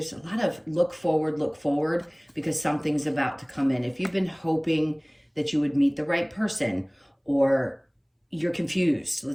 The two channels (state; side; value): identical; both; correlation 1.00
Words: a lot of look forward, because something's about to come in. If you've been hoping that you would meet the right person, or you're confused,